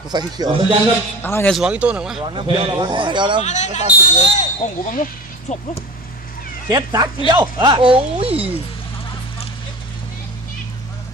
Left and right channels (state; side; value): normal; both; correlation 0.34